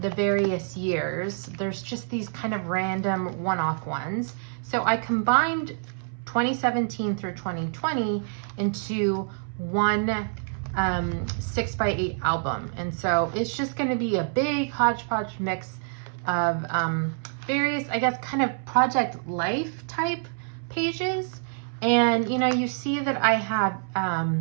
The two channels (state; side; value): silent; left; 60 dB below the other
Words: various years. There's just these kind of random one-off ones. So I combined 2017 through 2020 into one 6 by 8 album. And so it's just going to be a big hodgepodge mix of various, I guess, kind of Project Life type pages. And, you know, you see that I have